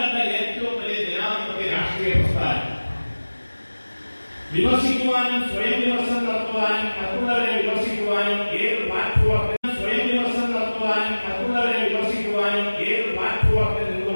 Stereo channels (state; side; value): inverted; both; correlation -1.00